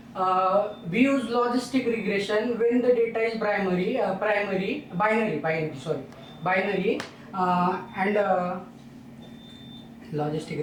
We use logistic regression when the data is binary, and logistic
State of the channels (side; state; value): both; identical; correlation 1.00